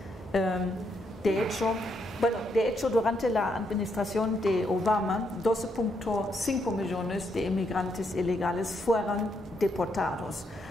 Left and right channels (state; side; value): normal; both; correlation 0.77